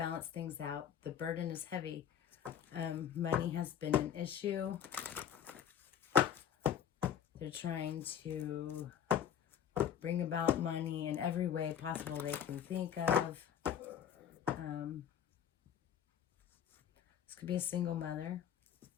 things out. The burden is heavy. Money has been an issue. They're trying to bring about money in every way possible they can think of. This could be a single mother.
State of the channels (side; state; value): right; quieter; 9.1 dB